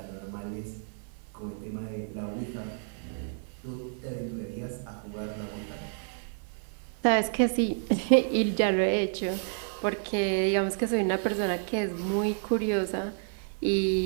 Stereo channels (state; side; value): silent; left; 56 dB below the other